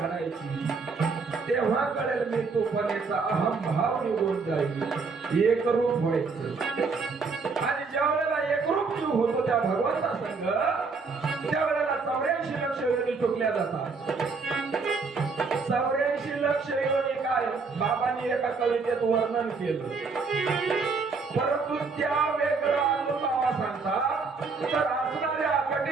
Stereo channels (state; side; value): quieter; left; 4.6 dB